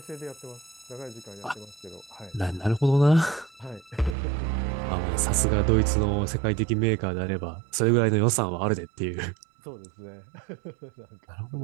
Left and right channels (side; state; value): left; drops out; at 4.2 s